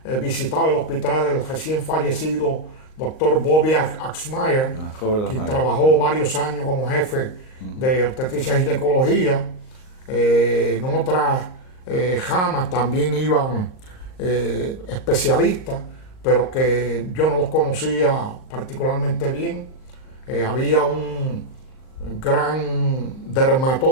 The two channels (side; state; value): right; late; 38 ms